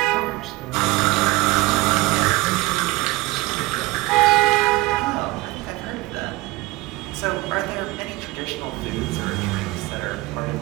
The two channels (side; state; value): left; quieter; 20.6 dB